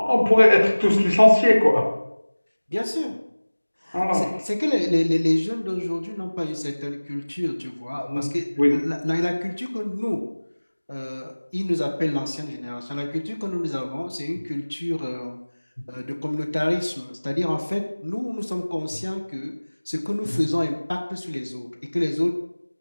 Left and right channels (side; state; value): both; inverted; correlation -1.00